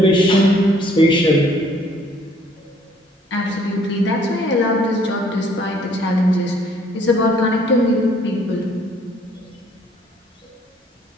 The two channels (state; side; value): normal; both; correlation 0.61